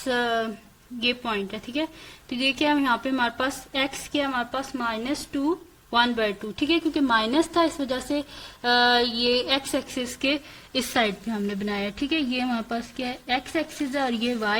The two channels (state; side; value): identical; both; correlation 1.00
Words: ये पॉइंट है। ठीक है, तो ये क्या है यहाँ पे हमारे पास x क्या है हमारे पास -2 1/2। ठीक है, क्योंकि माइनस था इस वजह से ये x एक्सिस के इस साइड पे हमने बनाया। ठीक है, ये हमारे पास क्या है, x एक्सिस है और ये y